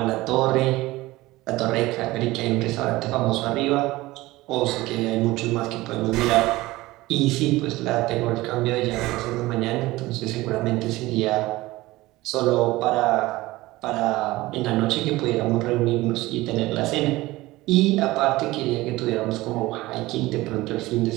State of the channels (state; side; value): quieter; left; 19.0 dB